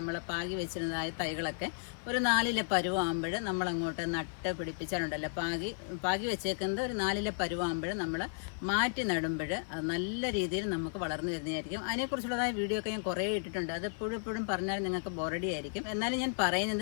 പാകി വെച്ചിരുന്നതായ തൈകളൊക്കെ ഒരു 4 പരുവാകുമ്പോൾ നമ്മളങ്ങോട്ട് നട്ട് പിടിപ്പിച്ചാലുണ്ടല്ലോ, പാകി വെച്ചേക്കുന്നത് ഒരു 4 പരുവാകുമ്പോൾ നമ്മൾ മാറ്റി നടുമ്പോൾ അത് നല്ല രീതിയിൽ നമുക്ക് വളർന്നു വരുന്നതായിരിക്കും. അതിനെക്കുറിച്ചുള്ളതായ വീഡിയോ ഒക്കെ ഞാൻ കുറേ ഇട്ടിട്ടുണ്ട്. അത് എപ്പോഴും പറഞ്ഞാൽ നിങ്ങൾക്ക് ബോറടി ആയിരിക്കും. എന്നാലും ഞാൻ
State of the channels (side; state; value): right; silent; 55 dB below the other